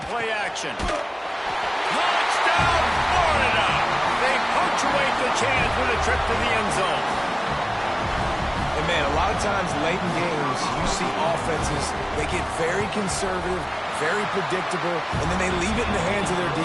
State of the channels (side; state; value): both; identical; correlation 1.00